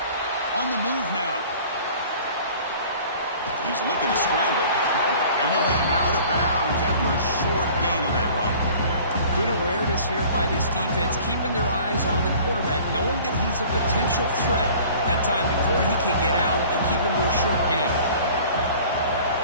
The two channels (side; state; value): both; inverted; correlation -0.48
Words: On the move now. He's looking to scramble. And he'll head out of bounds after a short gain on that run. Good awareness here by this defense, keeping their eyes on the quarterback, knowing that he's a potential threat. That time before he can get out, they keep him to a short gain.